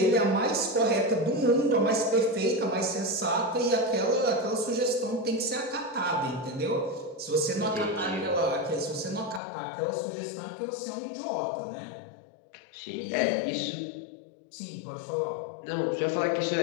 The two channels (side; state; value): right; drops out; at 9.4 s